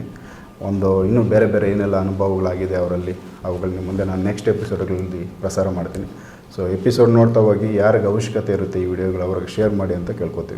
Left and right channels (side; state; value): both; identical; correlation 1.00